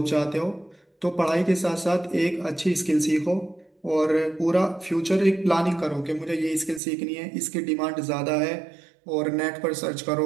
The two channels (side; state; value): left; drops out; at 6.8 s